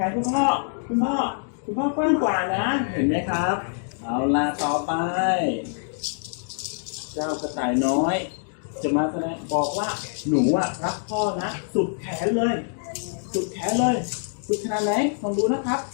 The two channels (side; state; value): right; silent; digital silence